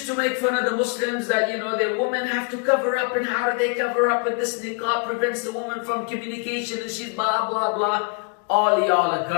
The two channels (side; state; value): right; quieter; 35.0 dB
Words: to make fun of the Muslims that, you know, the women have to cover up, and how do they cover up, and this niqab prevents the woman from communication, and she's blah, blah, blah. All y'all are